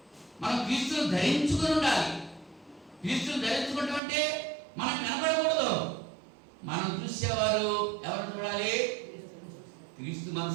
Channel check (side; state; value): left; drops out; at 4.0 s